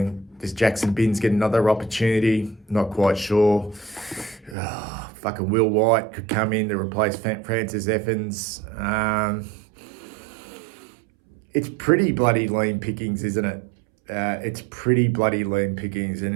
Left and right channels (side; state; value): left; drops out; at 4.5 s